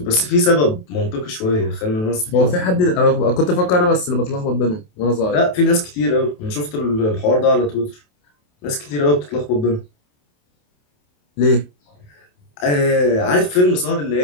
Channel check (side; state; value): right; late; 28 ms